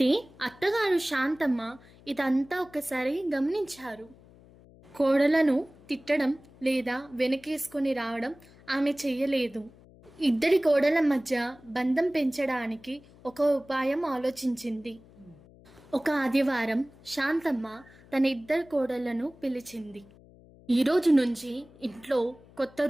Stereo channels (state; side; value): noise; left; hum, 24 dB below the sound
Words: అత్తగారు శాంతమ్మ ఇదంతా ఒకసారి గమనించారు. కోడలను తిట్టడం లేదా వెనకేసుకొని రావడం ఆమె చెయ్యలేదు. ఇద్దరి కోడల మధ్య బంధం పెంచడానికి ఒక ఉపాయం ఆలోచించింది. ఒక ఆదివారం శాంతమ్మ తన ఇద్దరు కోడళ్లను పిలిచింది. ఈరోజు నుంచి ఇంట్లో కొత్త